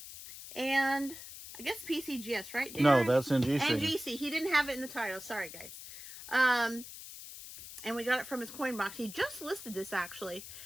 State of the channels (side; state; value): left; noise; hiss, 13 dB below the sound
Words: and I guess PCGS, right, Daren? No, that's NGC. NGC. He didn't have it in the title. Sorry, guys. And we got it from his coin box. He just listed this, actually.